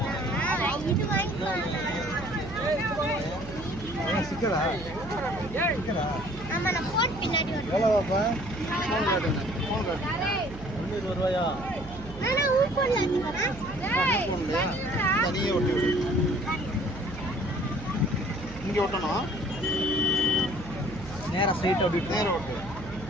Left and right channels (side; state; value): right; noise; hum, 13 dB below the sound